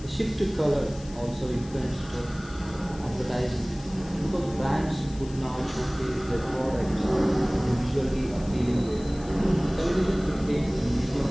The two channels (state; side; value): noise; left; hiss, 21 dB below the sound